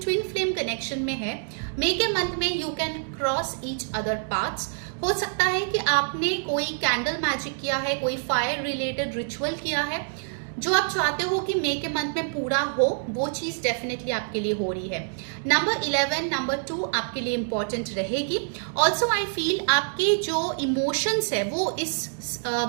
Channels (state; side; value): silent; left; digital silence